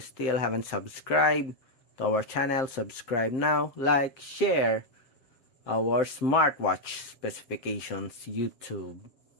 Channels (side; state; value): right; late; 7.6 ms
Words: haven't subscribed to our channel, subscribe now, like, share our smartwatch specifications YouTube